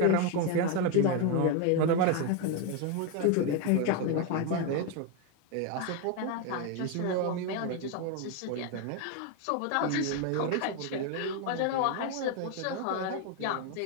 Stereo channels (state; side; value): different; both; correlation 0.02